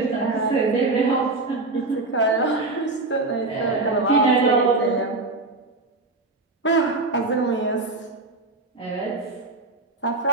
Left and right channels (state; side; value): quieter; left; 3.3 dB